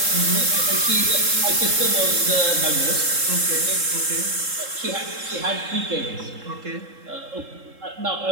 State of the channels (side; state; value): left; late; 3.7 ms